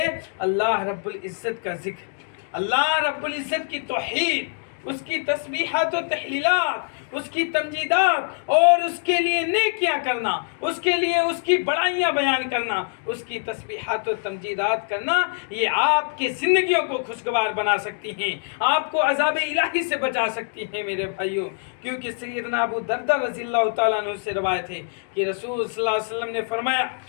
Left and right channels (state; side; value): silent; right; digital silence